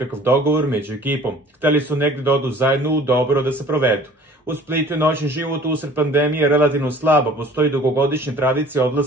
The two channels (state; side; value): normal; both; correlation 0.49